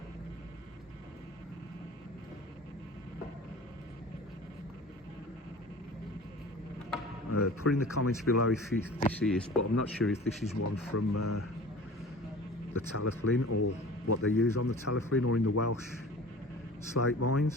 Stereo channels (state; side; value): normal; both; correlation 0.41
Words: Put in the comments below if this is, but I'm not sure if this is one from the Talaflin or what they use on the Talaflin or in the Welsh slate